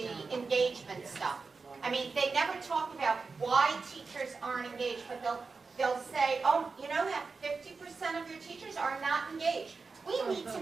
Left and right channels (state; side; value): quieter; left; 4.5 dB